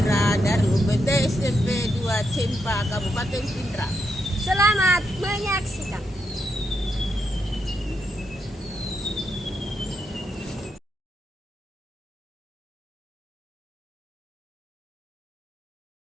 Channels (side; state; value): both; normal; correlation 0.82